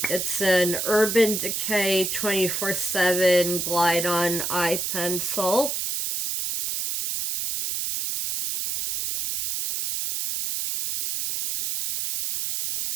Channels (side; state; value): right; noise; hiss, 2 dB below the sound